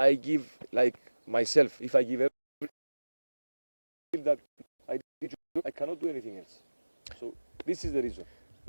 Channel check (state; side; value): inverted; both; correlation -1.00